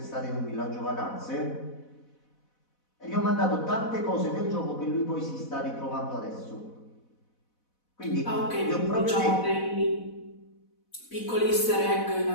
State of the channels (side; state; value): right; late; 4.1 ms